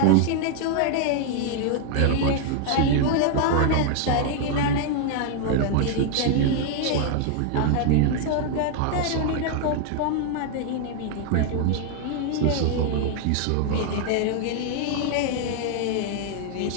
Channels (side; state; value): both; different; correlation 0.01